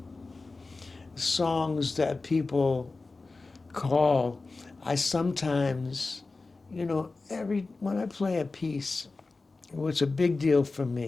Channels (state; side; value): quieter; right; 3.7 dB